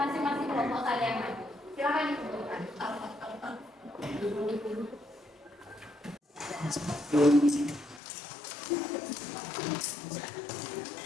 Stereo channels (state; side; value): drops out; right; at 8.0 s